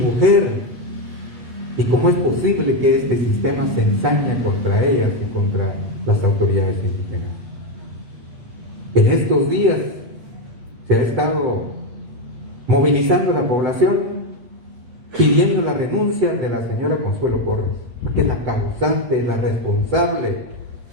¿Y cómo es posible que este sistema se ensaña contra ellas y contra las autoridades indígenas? En estos días se ha estado movilizando la población pidiendo la renuncia de la señora Consuelo Porras, que es la causante, la responsable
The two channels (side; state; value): left; late; 8.3 ms